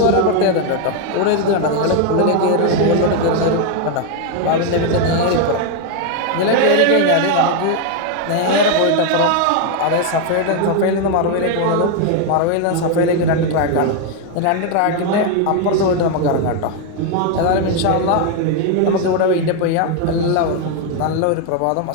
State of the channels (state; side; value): different; both; correlation 0.01